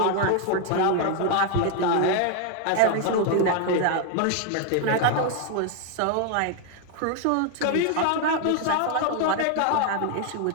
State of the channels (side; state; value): both; different; correlation 0.00